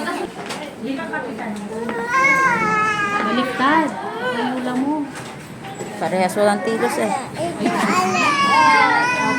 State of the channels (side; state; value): both; identical; correlation 1.00